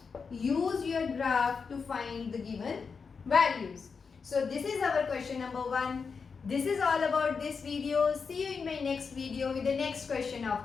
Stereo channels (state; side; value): quieter; right; 5.4 dB